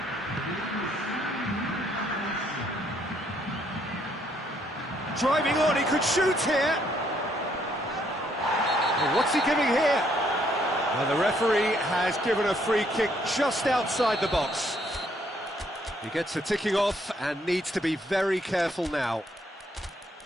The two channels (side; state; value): both; normal; correlation 0.69